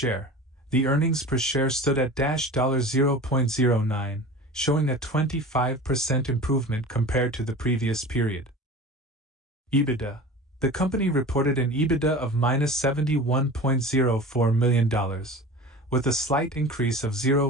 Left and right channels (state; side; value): normal; both; correlation 0.36